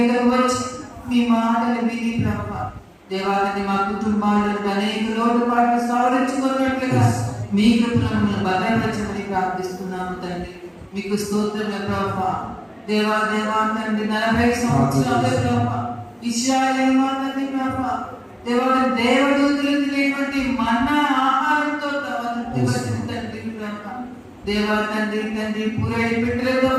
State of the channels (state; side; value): identical; both; correlation 1.00